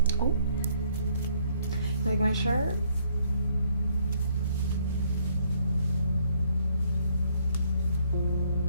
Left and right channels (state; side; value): inverted; both; correlation -0.67